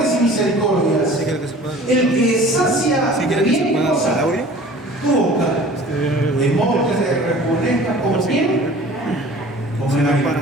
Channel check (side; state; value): both; normal; correlation 0.45